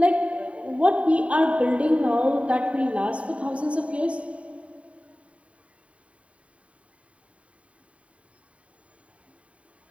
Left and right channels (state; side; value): late; left; 0.064 ms